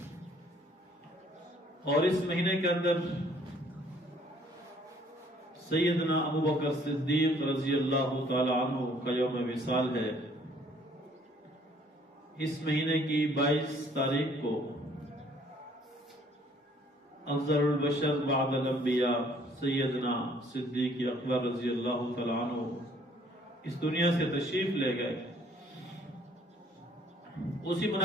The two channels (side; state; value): both; normal; correlation 0.60